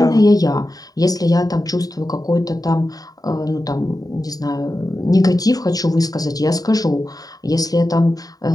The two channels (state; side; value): late; right; 0.18 ms